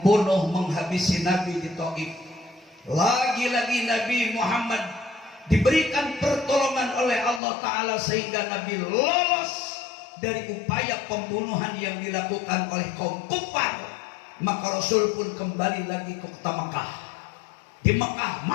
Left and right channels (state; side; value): drops out; right; at 7.4 s